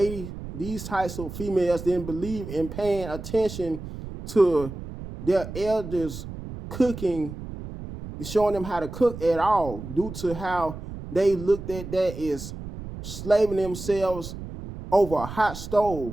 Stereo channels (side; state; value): right; noise; rumble, 10 dB below the sound